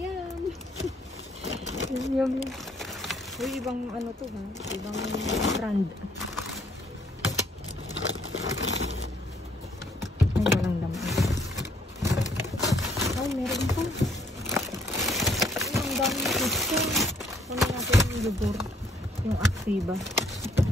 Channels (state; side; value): normal; both; correlation 0.65